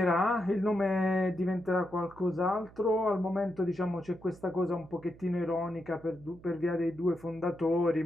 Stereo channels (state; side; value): noise; right; hum, 22 dB below the sound